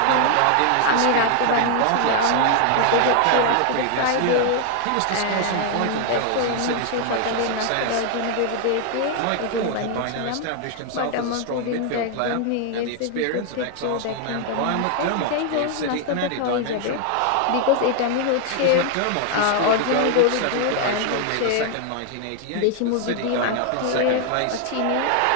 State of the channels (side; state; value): both; different; correlation 0.00